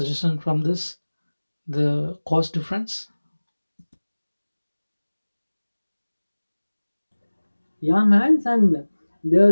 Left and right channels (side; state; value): both; inverted; correlation -1.00